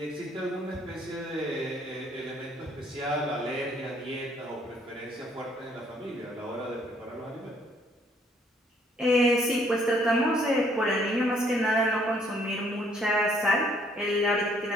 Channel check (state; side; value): normal; both; correlation 0.64